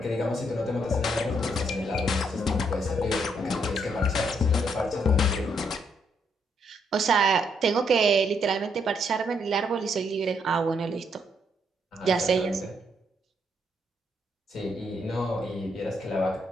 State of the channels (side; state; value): both; normal; correlation 0.74